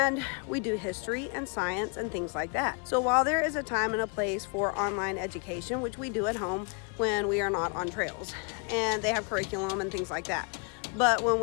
we do history and science and things like that. So while there is a time and a place for online education, which we do at home when we are not on trails, and they have curriculum and things like that. But when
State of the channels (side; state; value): right; quieter; 36.4 dB